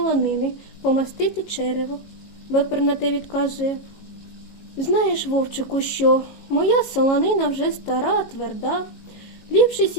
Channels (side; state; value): right; late; 18 ms